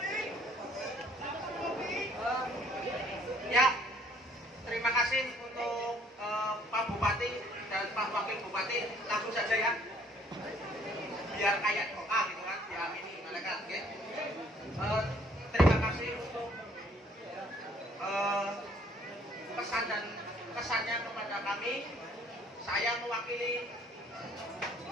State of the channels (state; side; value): normal; both; correlation 0.61